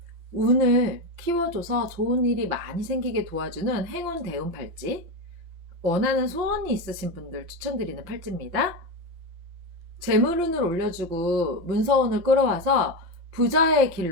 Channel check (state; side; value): late; left; 5.8 ms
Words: 운을 키워줘서 좋은 일이 많이 생기게 도와주는 행운 대운 팔찌. 원하는 소원이 있으신 분들 추천드리는 팔찌입니다. 재물운을 올려주고 문서운을 끌어와서 부자의